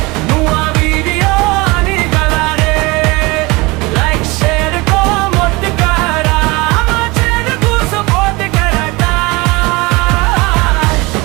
nuwa video ani gala re like share comment kara ama channel ko support karata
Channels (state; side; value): quieter; left; 24.1 dB